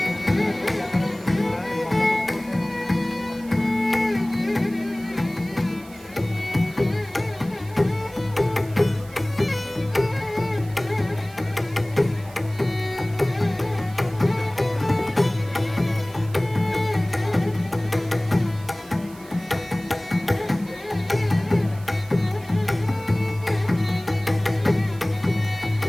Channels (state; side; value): noise; right; hiss, 22 dB below the sound